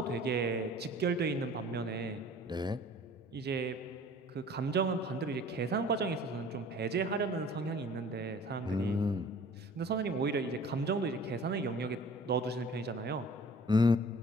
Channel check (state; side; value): normal; both; correlation 0.49